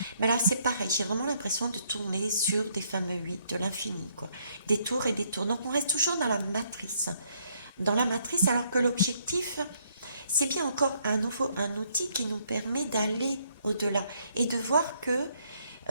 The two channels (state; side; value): inverted; both; correlation -0.69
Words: Mais là, c'est pareil, j'ai vraiment l'impression de tourner sur des fameux 8 de l'infini, quoi. Des tours et des tours. Donc on reste toujours dans la matrice. Dans la matrice, alors que l'objectif, c'est bien encore un outil qui nous permet d'aller au-delà et de voir que